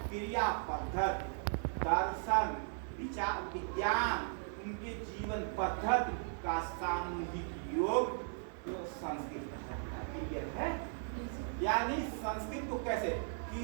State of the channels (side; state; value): left; silent; 53 dB below the other